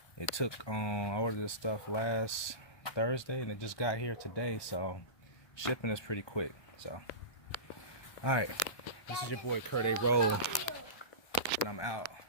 It took, I ordered this stuff last Thursday and it just got here today. So shipping is pretty quick. So, all right. This is your boy Kurt A. Roll. And I'm out.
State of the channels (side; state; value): right; late; 1.2 ms